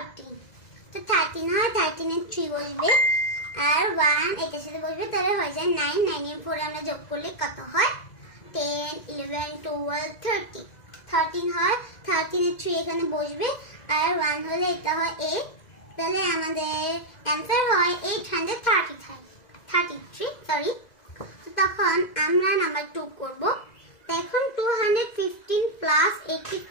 তো 13 হয় 13 এর 3 বসবে আর 1 এটার সাথে বসবে তাহলে হয়ে যায় 9 9 এর 4 আমরা যোগ করলে কত হয় 10 11 12 13 13 হয় 13 এর 3 এখানে বসবে আর 1 হলে এটা হয় 8 তাহলে আমাদের आंसर হয় 833 সরি। তো তখন আমরা নাম্বার 2 করব। তো এখন 215 প্লাস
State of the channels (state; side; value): late; right; 2.0 ms